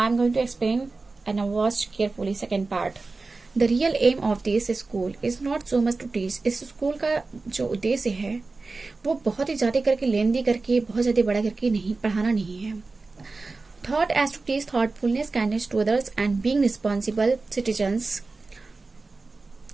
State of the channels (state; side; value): quieter; left; 3.8 dB